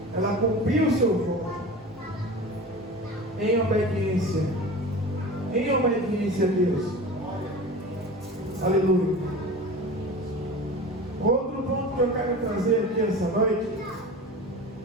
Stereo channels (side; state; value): both; normal; correlation 0.34